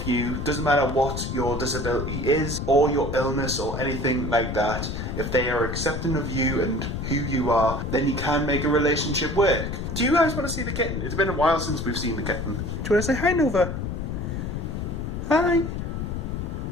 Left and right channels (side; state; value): left; noise; rumble, 4 dB below the sound